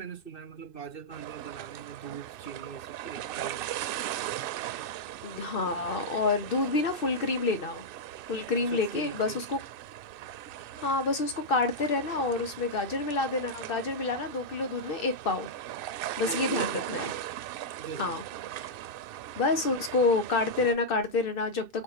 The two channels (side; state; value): right; late; 2.6 ms